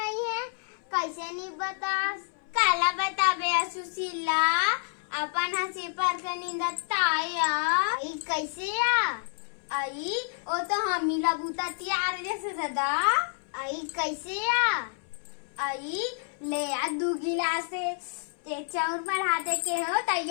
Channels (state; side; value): silent; right; 59 dB below the other